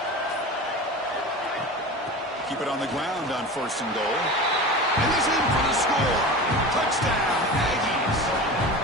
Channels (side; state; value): both; normal; correlation 0.31